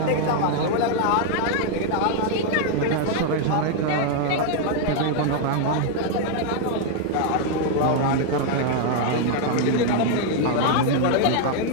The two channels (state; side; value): different; both; correlation 0.00